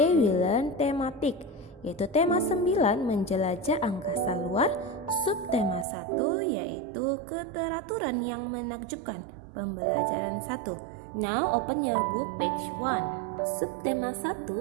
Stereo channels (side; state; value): left; drops out; at 5.9 s